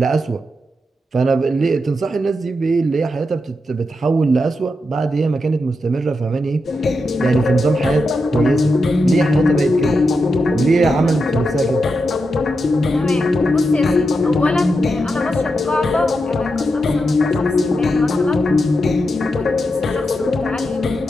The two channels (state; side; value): normal; both; correlation 0.86